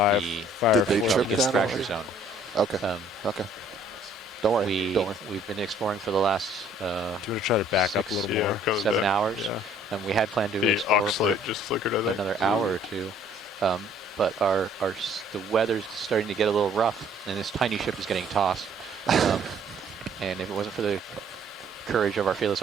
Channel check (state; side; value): normal; both; correlation 0.59